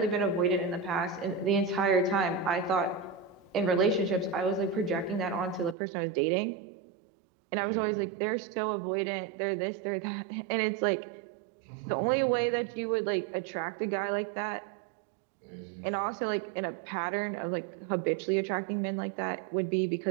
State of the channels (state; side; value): drops out; left; at 5.8 s